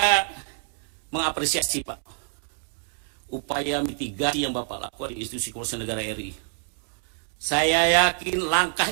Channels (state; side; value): silent; left; 61 dB below the other